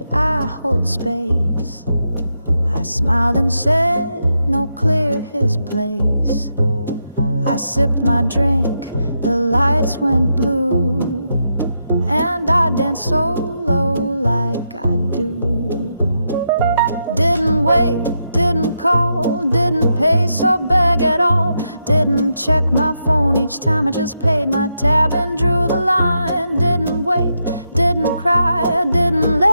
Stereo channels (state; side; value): inverted; both; correlation -0.83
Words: I hold space? I smiled and said, no, clear his place. I sipped my drink, the lights went blue, and I danced solo like I do. Didn't wait, didn't call, didn't pay or beg at all. Didn't check my phone each time, I just paid my tab and drew the line. Didn't wait, didn't cry, didn't